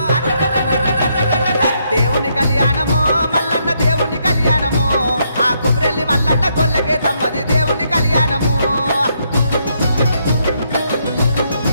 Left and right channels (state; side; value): inverted; both; correlation -0.75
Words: దేవుని కళ్యాణము మల్లన్న దేవుని కళ్యాణము ఆ కుమరెల్లి మల్లన్న గొల్లకే తమ్మది దేవుని కళ్యాణము